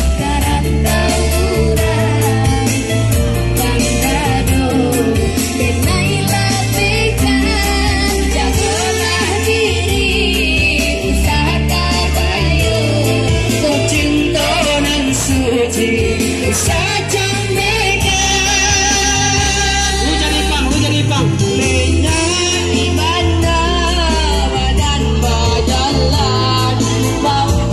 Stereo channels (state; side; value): identical; both; correlation 1.00